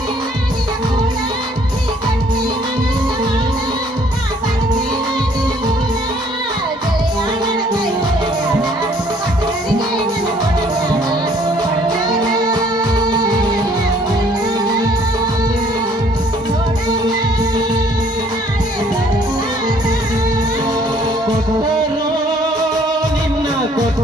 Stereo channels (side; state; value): both; normal; correlation 0.60